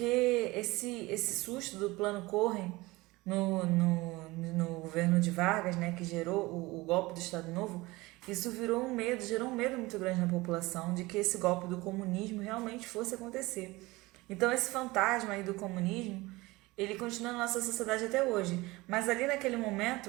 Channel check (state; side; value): quieter; left; 21.2 dB